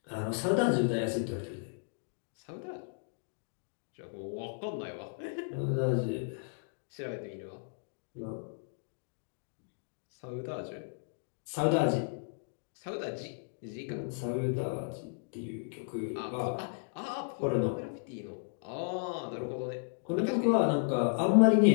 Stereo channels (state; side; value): silent; right; digital silence